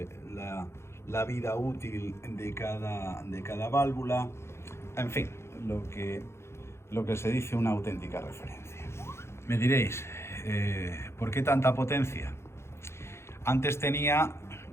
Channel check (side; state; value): right; late; 0.13 ms